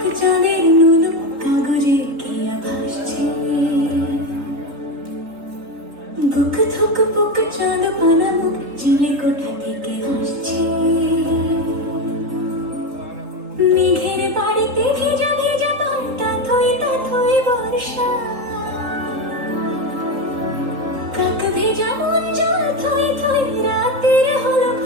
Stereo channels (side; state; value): left; late; 3.7 ms